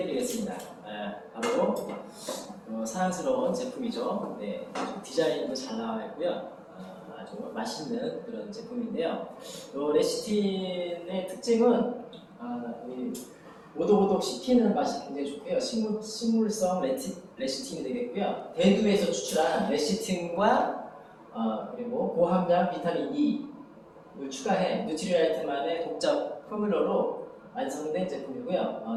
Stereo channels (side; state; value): both; identical; correlation 1.00